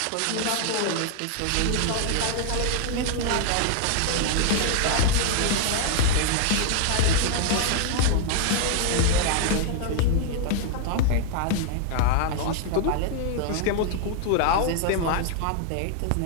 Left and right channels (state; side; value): different; both; correlation 0.00